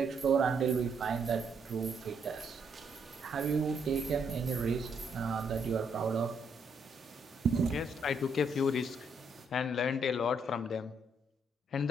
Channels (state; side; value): normal; both; correlation 0.73